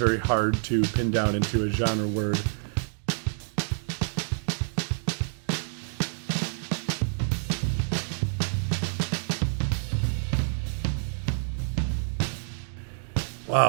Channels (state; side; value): silent; left; digital silence